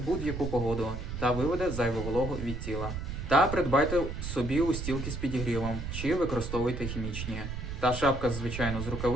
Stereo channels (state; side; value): noise; right; rumble, 6 dB below the sound